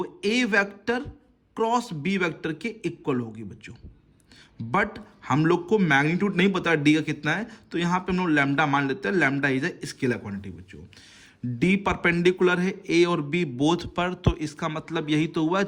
ए वेक्टर क्रॉस बी वेक्टर के इक्वल होगी बच्चों। बट हम लोग को मैग्नीट्यूड नहीं पता डी का कितना है, तो यहां पे हम लोग लैम्डा मान लेते हैं। Lambda is a scalar quantity बच्चों। डी परपेंडिकुलर है ए और बी बोथ पर, तो इसका मतलब यही तो हुआ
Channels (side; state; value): both; identical; correlation 1.00